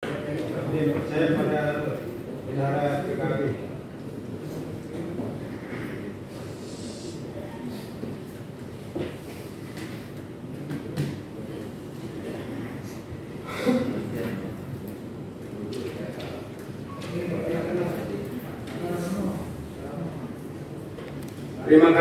Saya pada bendahara PKB. Terima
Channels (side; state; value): both; identical; correlation 1.00